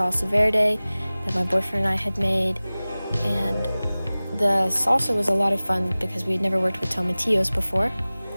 verde that my boyfriend and I had made. And the salsa was a lot of fun because we had never worked with tomatillos before.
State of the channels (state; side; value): inverted; both; correlation -0.99